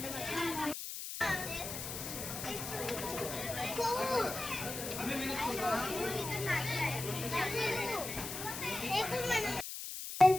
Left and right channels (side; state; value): left; noise; hiss, 7 dB below the sound